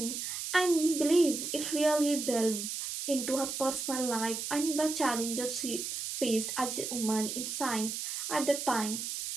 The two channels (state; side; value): noise; right; hiss, 4 dB below the sound